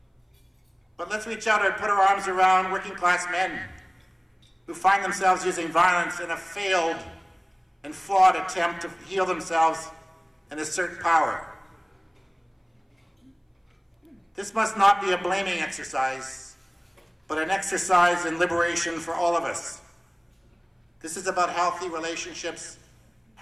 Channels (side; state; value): both; identical; correlation 1.00